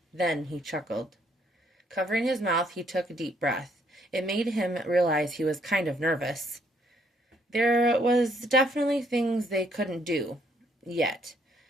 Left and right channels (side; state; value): both; normal; correlation 0.68